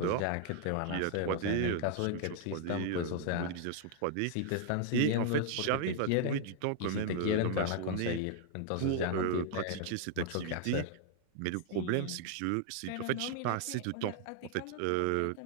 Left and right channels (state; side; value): different; both; correlation 0.00